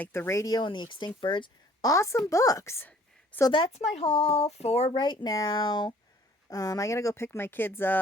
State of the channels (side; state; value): both; normal; correlation 0.56